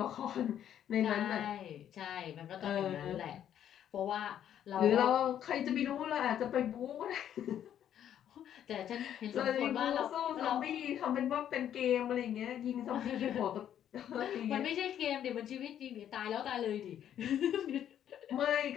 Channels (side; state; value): right; quieter; 10.2 dB